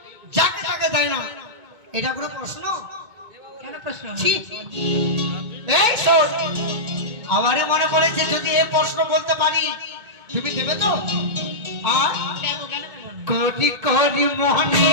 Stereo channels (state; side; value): late; left; 2.2 ms